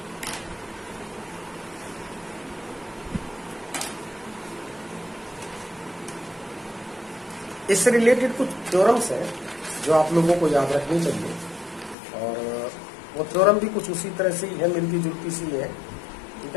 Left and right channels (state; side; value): drops out; right; at 12.0 s